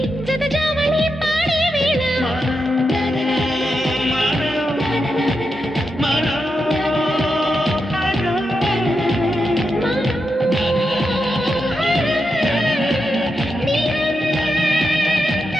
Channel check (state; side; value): normal; both; correlation 0.86